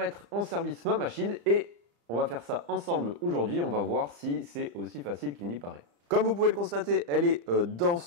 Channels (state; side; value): late; left; 35 ms